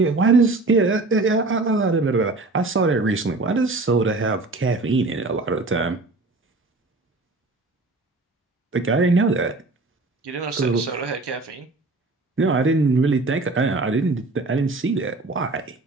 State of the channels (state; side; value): quieter; left; 3.3 dB